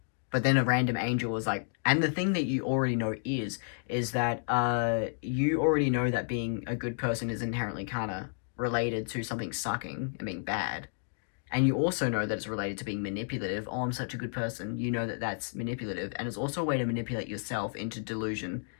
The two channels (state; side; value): silent; right; digital silence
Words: But then a random angel was like, and the thing that you already know is that you already know that being a good person is inherently kind of related to something sucking and being bad. And you also know that it's related to being manipulative. Oh, I'm such a good person. You know that that's manipulative. And it's also a way to manipulate yourself into delusion